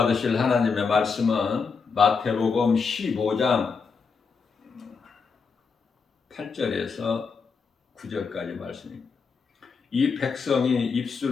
하나님의 말씀은 마태복음 15장 8절에서 9절까지 말씀입니다. 이 백성이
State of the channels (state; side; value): quieter; right; 5.2 dB